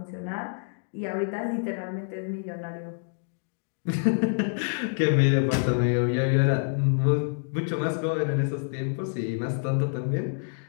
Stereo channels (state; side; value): silent; right; digital silence